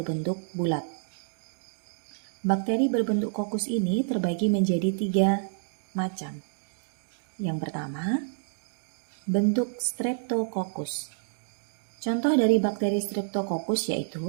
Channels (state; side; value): silent; left; 59 dB below the other